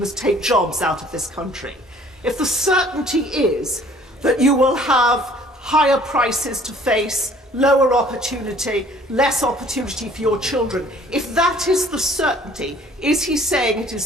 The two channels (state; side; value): normal; both; correlation 0.55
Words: take jobs out of this country? If the certainty is that you will have higher prices to face, lower opportunity, less opportunity for your children, if that is the certainty, is he saying it